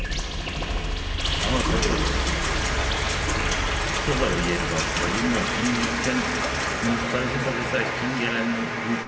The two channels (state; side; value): identical; both; correlation 1.00